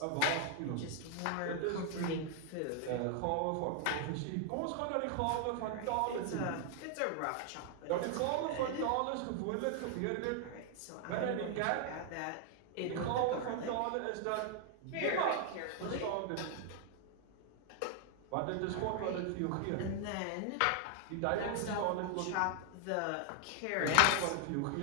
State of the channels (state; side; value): different; both; correlation 0.00